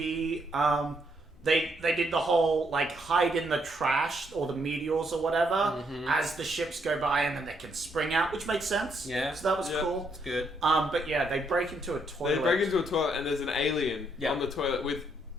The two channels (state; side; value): normal; both; correlation 0.74